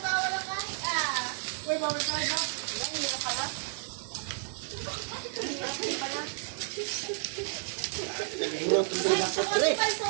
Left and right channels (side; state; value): left; silent; digital silence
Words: tawa ng kahit Uy, babalik ka rin ha? Ang hirap pala.